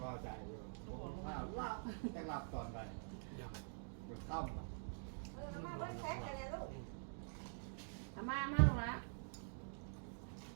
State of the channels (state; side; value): silent; left; digital silence